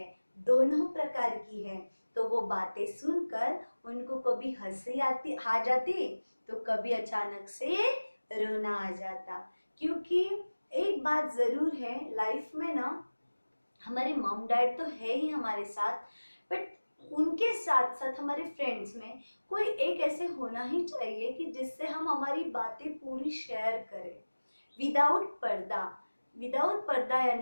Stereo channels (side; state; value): both; inverted; correlation -1.00